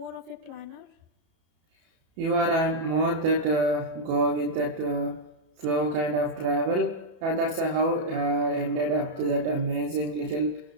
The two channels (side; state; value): left; late; 31 ms